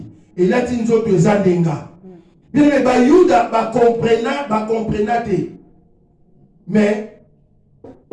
Et là ti nzoto ezandenga. Bien mais ba Yuda ba comprena te. Mais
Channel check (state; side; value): identical; both; correlation 1.00